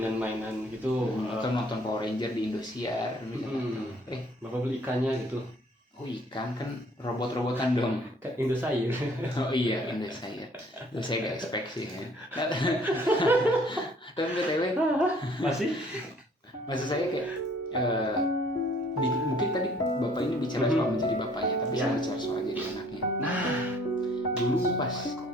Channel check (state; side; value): normal; both; correlation 0.58